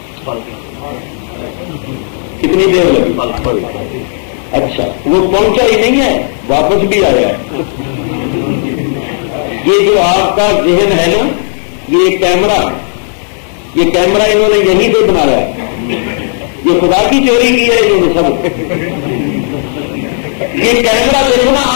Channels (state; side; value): silent; right; digital silence